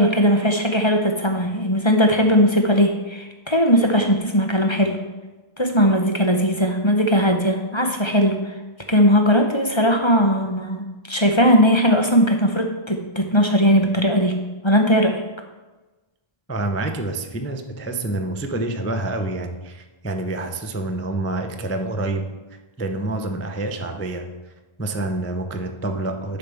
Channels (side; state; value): right; late; 1.3 ms